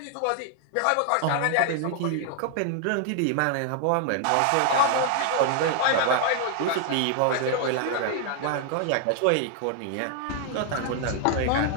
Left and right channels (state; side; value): different; both; correlation 0.00